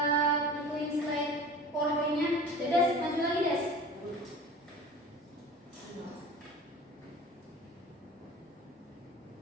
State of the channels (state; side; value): normal; both; correlation 0.39